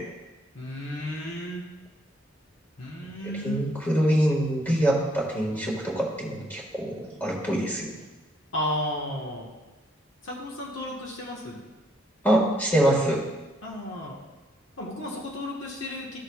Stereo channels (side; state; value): both; normal; correlation 0.70